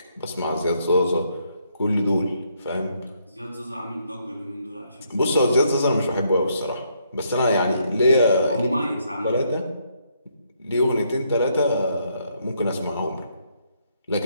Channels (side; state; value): both; inverted; correlation -0.74